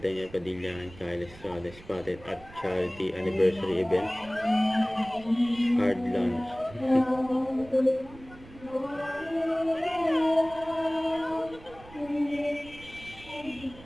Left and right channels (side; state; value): right; noise; rumble, 20 dB below the sound